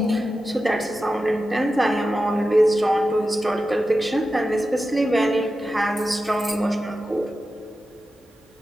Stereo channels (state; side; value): normal; both; correlation 0.92